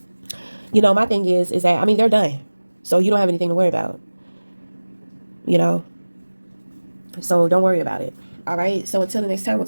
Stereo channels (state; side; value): inverted; both; correlation -1.00